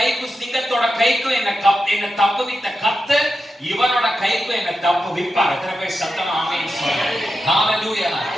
சிங்கத்தோட கைக்கும் என்ன தப்புவித்த கர்த்தர் இவனோட கைக்கும் என்ன தப்புவிப்பார். எத்தனை பேர் சத்தமா ஆமென் சொல்லுங்க? ஹalleluya.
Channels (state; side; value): normal; both; correlation 0.90